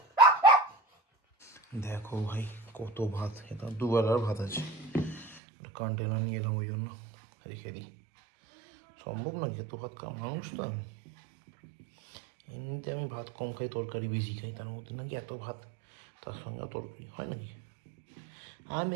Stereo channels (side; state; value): left; drops out; at 5.4 s